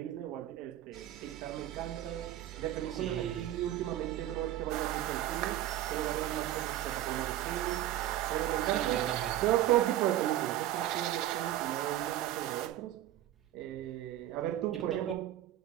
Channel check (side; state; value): left; quieter; 13.2 dB